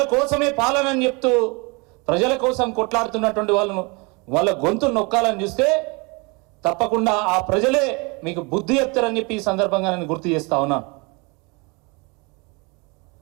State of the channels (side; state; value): left; quieter; 29.0 dB